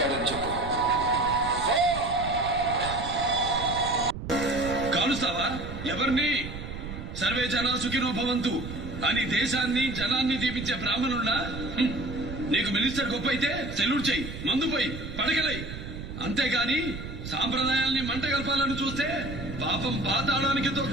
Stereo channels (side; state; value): right; noise; rumble, 9 dB below the sound